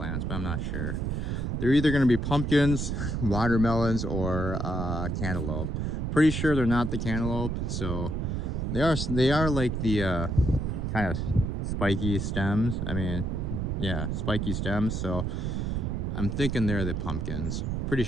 but I'm not sure. They're either going to be pumpkins, watermelons, or cantaloupe. Pretty sure they're not the cantaloupe. So they are like the kind of spiky stems. I mean, yeah, spiky stems. So I'm thinking they're the pumpkins. Pretty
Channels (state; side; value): noise; right; rumble, 1 dB below the sound